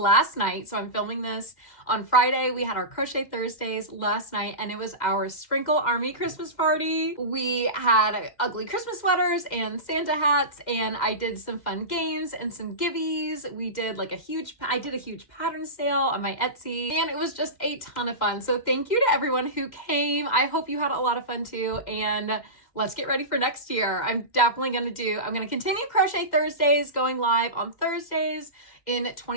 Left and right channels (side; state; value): right; late; 2.1 ms